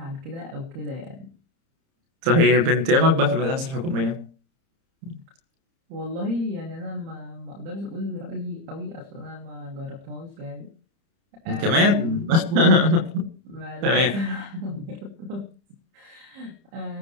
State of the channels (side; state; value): left; late; 30 ms